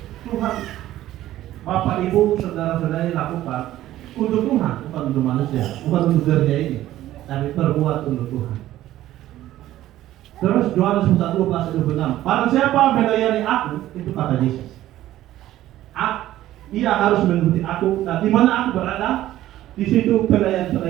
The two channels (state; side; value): quieter; left; 14.1 dB